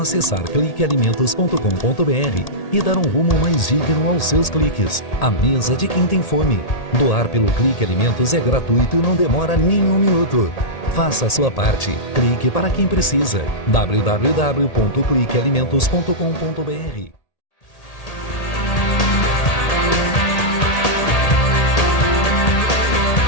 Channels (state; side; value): late; right; 1.8 ms